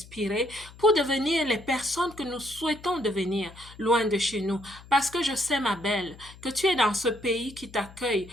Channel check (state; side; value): noise; left; hum, 20 dB below the sound